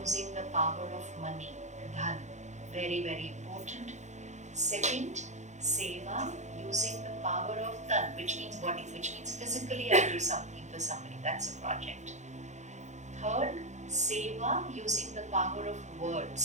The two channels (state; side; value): late; left; 0.34 ms